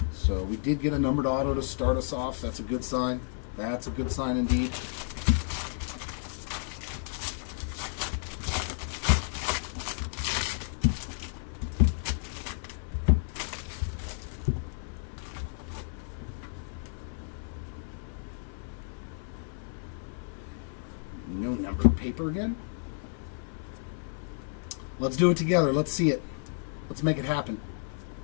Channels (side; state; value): right; silent; 57 dB below the other